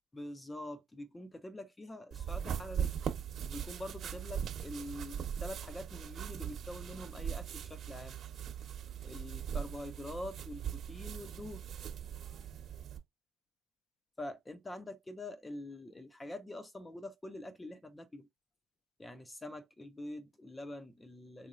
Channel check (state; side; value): quieter; left; 4.4 dB